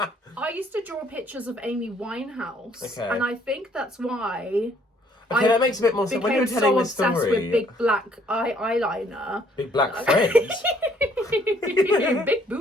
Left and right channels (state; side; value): normal; both; correlation 0.63